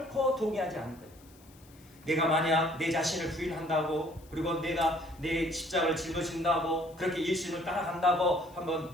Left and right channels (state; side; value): noise; left; hiss, 26 dB below the sound